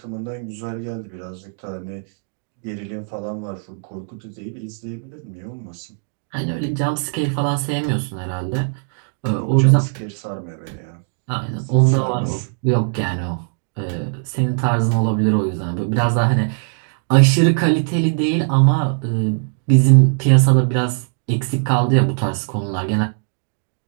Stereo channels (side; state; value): left; silent; 66 dB below the other